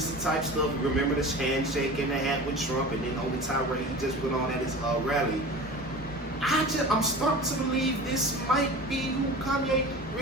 type stuff. Remember the handshake and the hat with Trump, and then on the tirade he just went on at his rally. I'm starting to believe this might be who Kanye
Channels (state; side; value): normal; both; correlation 0.35